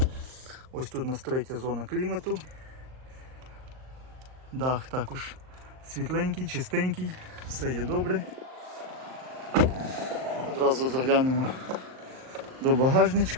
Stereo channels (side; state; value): left; late; 38 ms